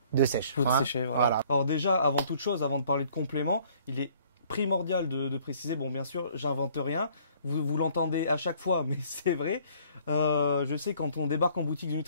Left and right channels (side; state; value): both; inverted; correlation -0.59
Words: de sèche? Pour sécher, voilà. Alors déjà, avant toute chose, avant de parler de compléments, il est primordial de préciser, bon bien sûr, j'invente rien, vous l'entendez à chaque fois, mais c'est vrai. Je sais, quand on débarque en boutique de